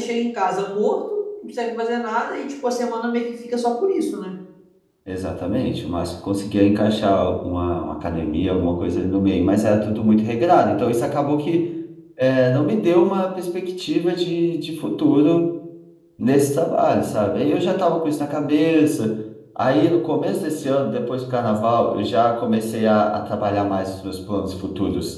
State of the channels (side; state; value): both; identical; correlation 1.00